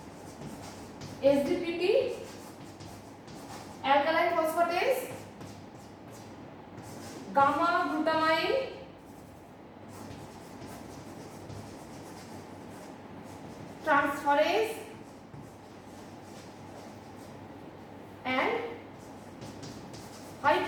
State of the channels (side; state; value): both; identical; correlation 1.00